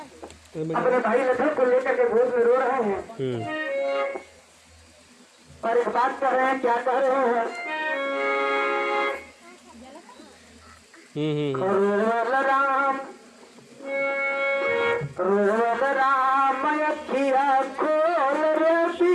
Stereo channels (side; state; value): both; identical; correlation 1.00